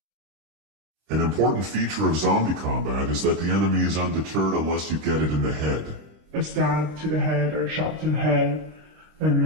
An important feature of zombie combat is that the enemy is undeterred unless you get it in the head. A stab to the head or shot to the head, and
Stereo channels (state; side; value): late; left; 26 ms